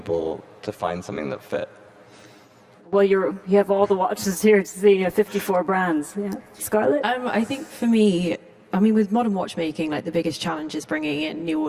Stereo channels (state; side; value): identical; both; correlation 1.00